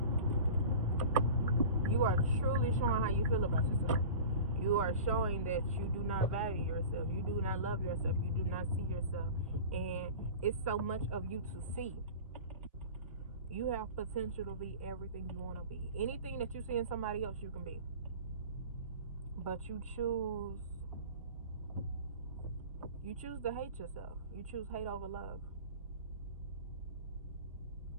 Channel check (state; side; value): inverted; both; correlation -0.36